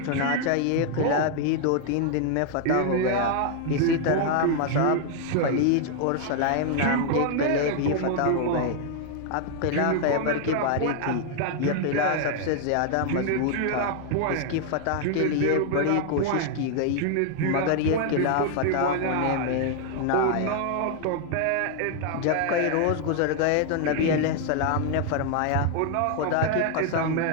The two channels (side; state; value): both; different; correlation 0.00